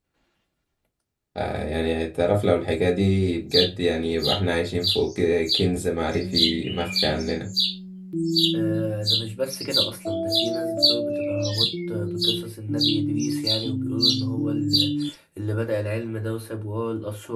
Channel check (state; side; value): identical; both; correlation 1.00